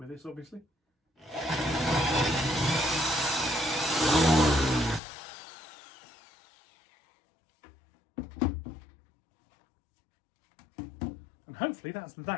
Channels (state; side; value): drops out; right; at 5.0 s